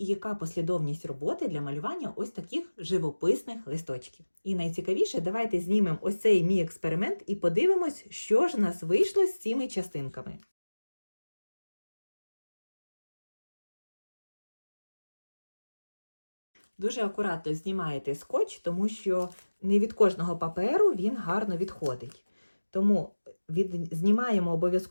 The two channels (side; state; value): both; inverted; correlation -1.00